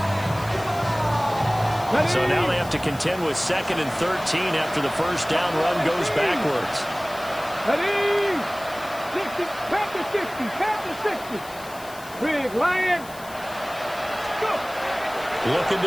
So now they have to contend with 2nd and 13 after the first down run goes backwards. Ready? 60, back to 60, back to 60. Big Lion. Go. Looking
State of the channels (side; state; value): left; noise; hiss, 18 dB below the sound